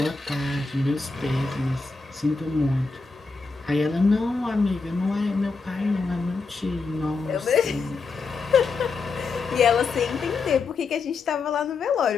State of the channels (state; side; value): quieter; right; 4.3 dB